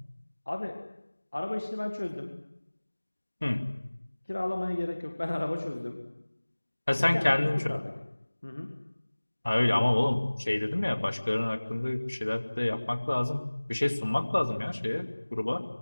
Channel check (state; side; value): inverted; both; correlation -1.00